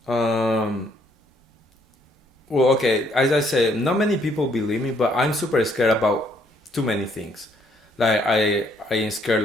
Um, well, okay, as I say, not many people believe me, but I'm super scared about too many things. Like I am scared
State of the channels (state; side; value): normal; both; correlation 0.68